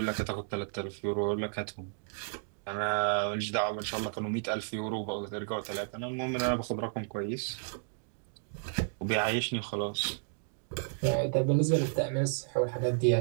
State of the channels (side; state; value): left; silent; digital silence